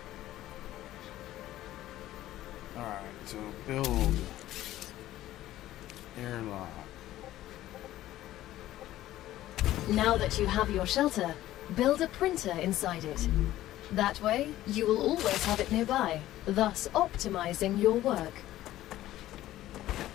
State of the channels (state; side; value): quieter; right; 14.4 dB